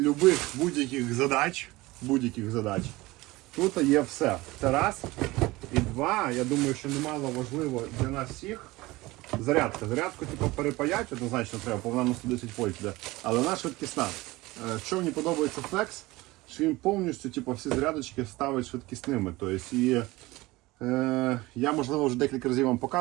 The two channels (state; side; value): quieter; left; 20.3 dB